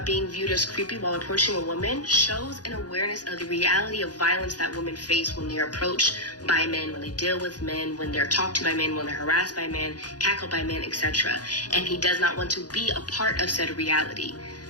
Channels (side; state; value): right; late; 0.69 ms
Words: being viewed as creepy while approaching a woman shows an awareness of the reality of violence that women face when they're approached by men, when they deal with men, when they're talked to by men, when they're harassed by men, cackled by men, etc. And he does not want to be a part of said reality.